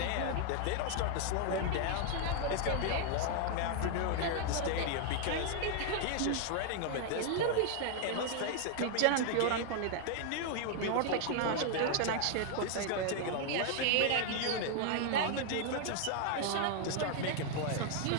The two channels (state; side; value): different; both; correlation 0.00